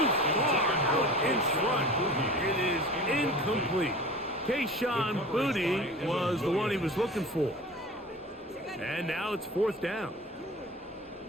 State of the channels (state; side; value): normal; both; correlation 0.37